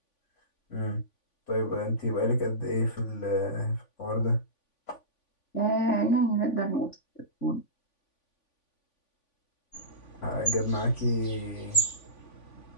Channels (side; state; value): right; late; 3.5 ms